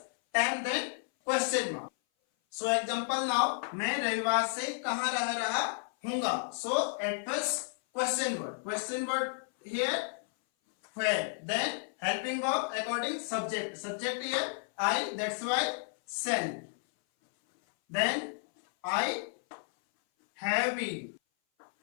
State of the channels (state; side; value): silent; right; 56 dB below the other